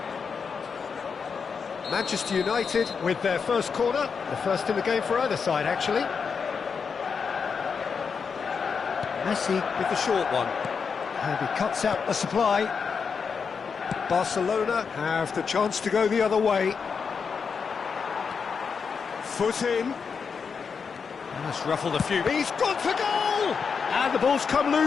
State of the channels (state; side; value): quieter; right; 5.8 dB